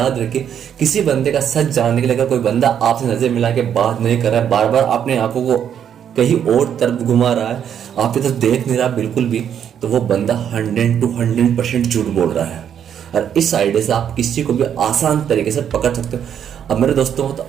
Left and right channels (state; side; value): quieter; left; 8.9 dB